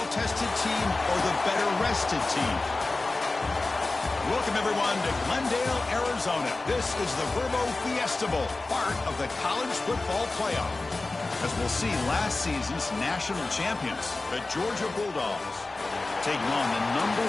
team or the better-rested team? Welcome, everyone, to Glendale, Arizona. This is the Verbo Fiesta Bowl, part of the college football playoff. As we'll see, last season's national champions, the Georgia Bulldogs, taking on the number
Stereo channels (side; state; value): right; quieter; 3.3 dB